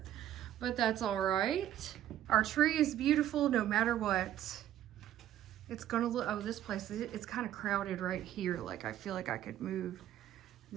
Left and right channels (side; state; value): left; quieter; 12.0 dB